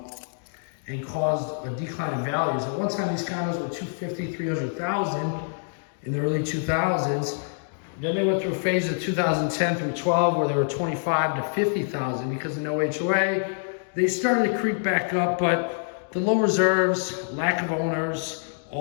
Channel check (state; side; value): silent; right; digital silence